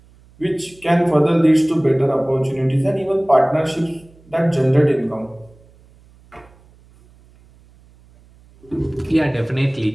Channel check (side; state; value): right; noise; hum, 28 dB below the sound